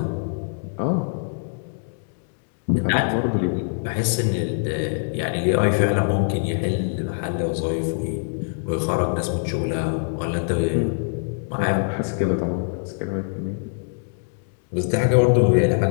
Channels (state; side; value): silent; right; digital silence